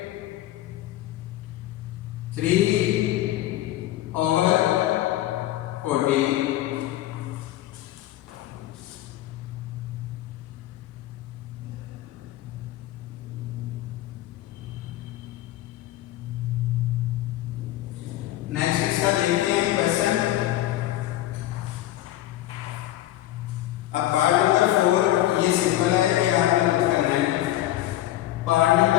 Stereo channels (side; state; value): right; quieter; 14.5 dB